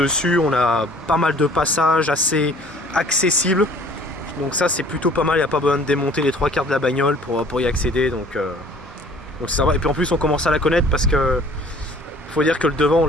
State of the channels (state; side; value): normal; both; correlation 0.52